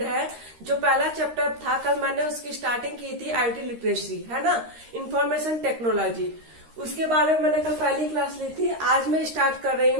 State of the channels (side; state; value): left; late; 13 ms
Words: है। जो पहला चैप्टर था, कल मैंने उसकी स्टार्टिंग की थी, आईटी लिटरेसी है ना, इंफॉर्मेशन टेक्नोलॉजी। उसके बारे में मैंने कल पहली क्लास ली थी। आज मैं स्टार्ट कर रही